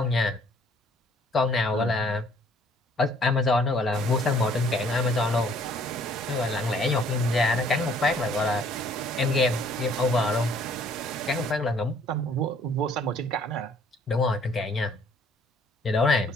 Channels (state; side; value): normal; both; correlation 0.60